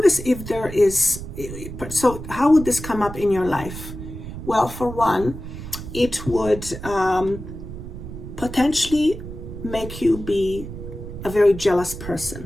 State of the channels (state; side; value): noise; right; rumble, 10 dB below the sound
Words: if there is, so how would this come up in your life? Well, for one, it would potentially make you be a very jealous